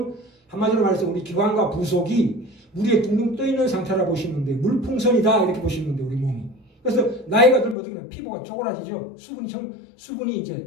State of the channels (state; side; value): drops out; right; at 7.8 s